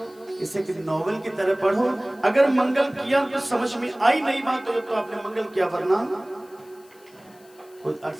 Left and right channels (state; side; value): noise; left; hiss, 28 dB below the sound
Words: इसे कि नॉवेल की तरह पढ़ो। अगर मंगल किया तो समझ में आई नहीं बात तो आपने मंगल किया, वरना कोई